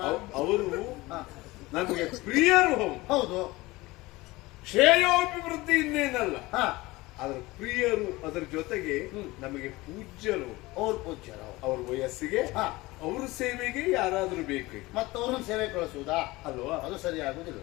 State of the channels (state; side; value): quieter; right; 20.7 dB